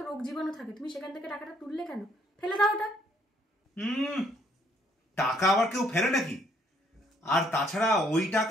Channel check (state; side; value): normal; both; correlation 0.66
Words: রোগ জীবাণু থাকে, তুমি সেখান থেকে টাকাটা তুললে কেন? ফেলে দাও ওটা। টাকা আবার কেউ ফেলে নাকি? আর তাছাড়া ওই